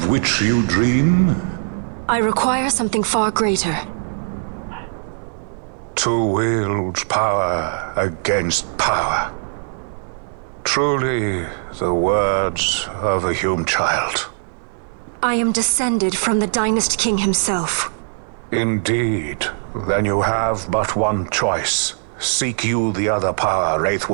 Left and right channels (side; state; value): left; silent; 66 dB below the other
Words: which you dream? I require something far greater. To wield power against power. Truly, the words of a Hume child. I am descended from the Dynast King himself. Indeed. Then you have but one choice. Seek you the other power